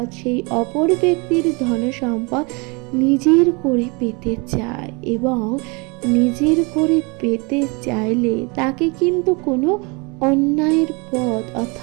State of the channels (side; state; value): left; quieter; 29.7 dB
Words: সেই অপর ব্যক্তির ধনসম্পদ নিজের করে পেতে চায়, এবং নিজের করে পেতে চাইলে তাকে কিন্তু কোনো অন্যায়ের পথ